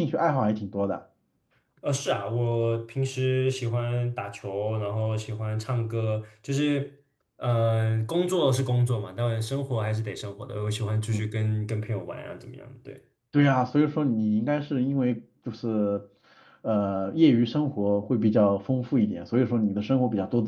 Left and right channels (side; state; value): both; identical; correlation 1.00